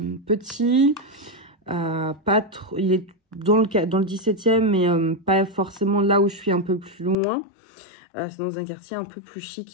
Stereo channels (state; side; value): drops out; right; at 7.2 s